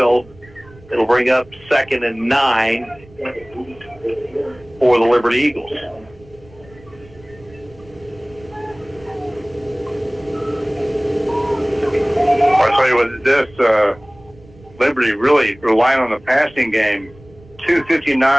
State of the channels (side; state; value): right; noise; rumble, 24 dB below the sound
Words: It'll bring up 2nd and 9 for the Liberty Eagles. I'll tell you what, this Liberty really relying on the passing game.